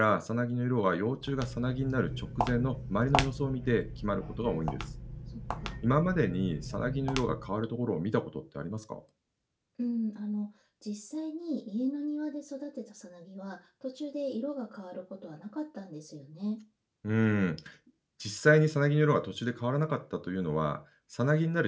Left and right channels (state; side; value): identical; both; correlation 1.00